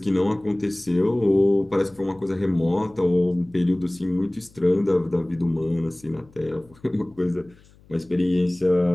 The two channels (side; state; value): left; noise; hum, 27 dB below the sound